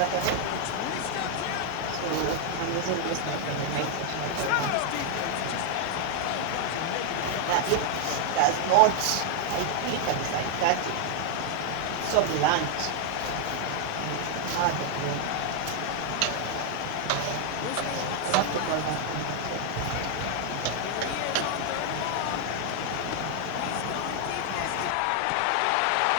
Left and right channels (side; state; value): both; different; correlation 0.00